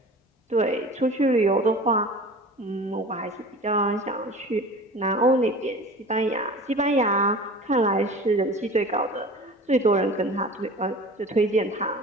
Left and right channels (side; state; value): both; normal; correlation 0.39